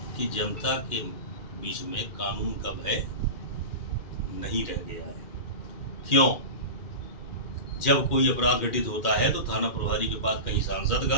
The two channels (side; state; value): right; late; 2.1 ms